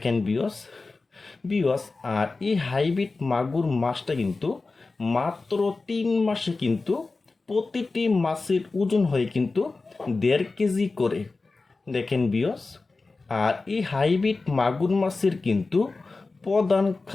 বিয়স, আর এই হাইব্রিড মাগুর মাছটা কিন্তু মাত্র 3 মাসে কিন্তু প্রতিটি মাছের ওজন হয় কিন্তু 1.5 কেজি করে। দেখেন বিয়স, আর এই হাইব্রিড মাগুর মাছের কিন্তু প্রধান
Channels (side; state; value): right; quieter; 3.7 dB